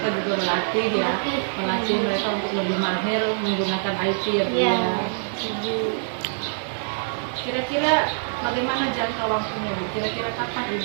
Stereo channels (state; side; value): silent; left; digital silence